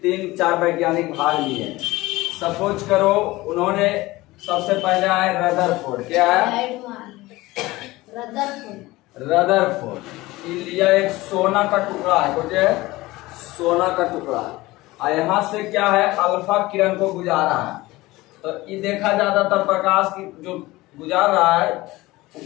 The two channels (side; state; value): right; quieter; 19.5 dB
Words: 3-4 वैज्ञानिक भाग लिए। सपोज करो उन्होंने सबसे पहले आए रदरफोर्ड। क्या है? रदरफोर्ड लिया एक सोना का टुकड़ा है, कुछ है सोना का टुकड़ा, और यहाँ से क्या है अल्फा किरण को गुजारा है। तो ये देखा ज्यादातर प्रकाश की जो गुजार रहा है वो